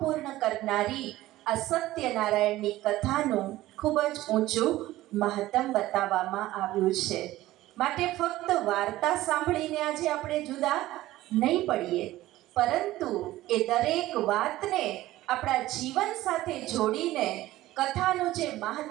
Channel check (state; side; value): quieter; left; 16.1 dB